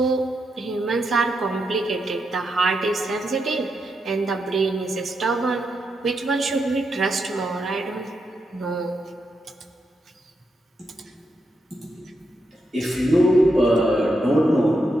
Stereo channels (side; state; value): both; normal; correlation 0.83